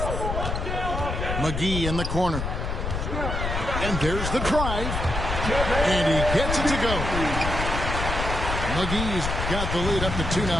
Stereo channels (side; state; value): left; noise; rumble, 3 dB below the sound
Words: McGee in the corner. And there's the drive. And he gets it to go. McGee's got the lead up to 2